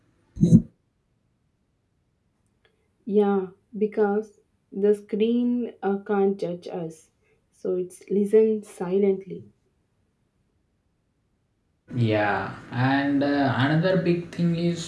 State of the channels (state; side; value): identical; both; correlation 1.00